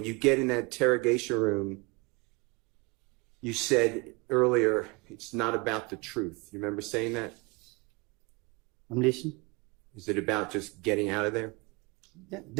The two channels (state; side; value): quieter; left; 27.9 dB